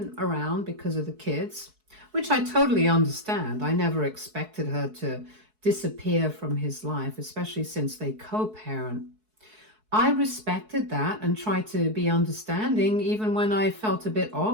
around because of the kids, which I totally understand. I never expected her to disappear from his life, especially since they co-parent. I respected that and tried to be understanding even when I felt a bit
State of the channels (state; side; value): late; left; 4.6 ms